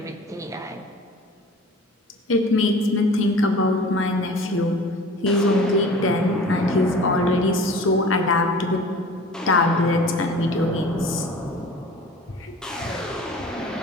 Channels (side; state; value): both; normal; correlation 0.43